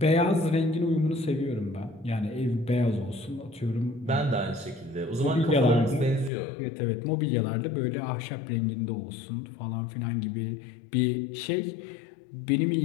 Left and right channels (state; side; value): drops out; right; at 6.3 s